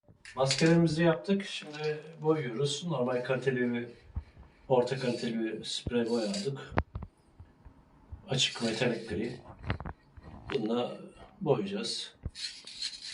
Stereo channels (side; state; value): both; identical; correlation 1.00